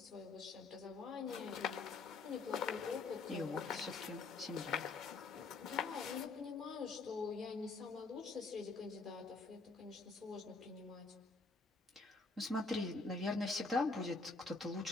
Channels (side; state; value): right; quieter; 4.0 dB